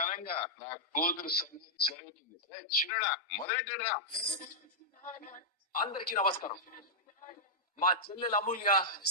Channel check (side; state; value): both; normal; correlation -0.09